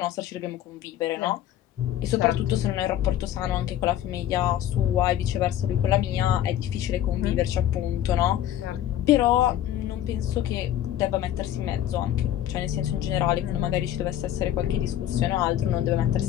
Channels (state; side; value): quieter; right; 11.7 dB